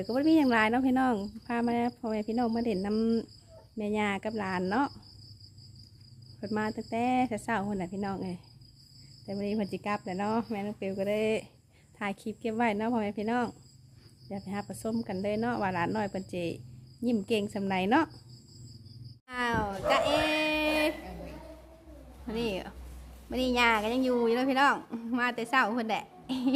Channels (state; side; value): identical; both; correlation 1.00